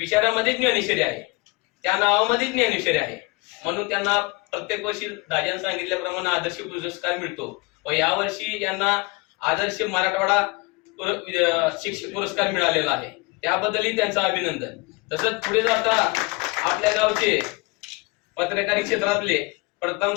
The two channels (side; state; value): right; quieter; 25.8 dB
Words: ज्ञानेश्वरी आहे, त्या नावामध्ये ज्ञानेश्वरी आहे, म्हणून त्यांना प्रत्येक वर्षी दादांनी सांगितल्याप्रमाणे आदर्श पुरस्कार मिळतो व यावर्षी यांना आदर्श मराठवाडा शिक्षक पुरस्कार मिळालेला आहे, त्याबद्दलही त्यांचं अभिनंदन। तसंच पुढे जाता आपल्या गावचे पत्रकारी क्षेत्रातले